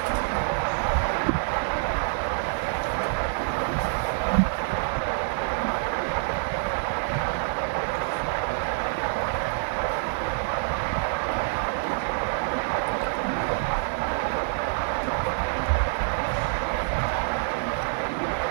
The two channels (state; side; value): silent; left; digital silence